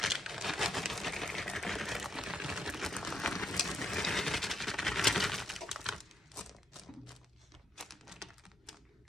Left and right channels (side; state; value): both; normal; correlation 0.79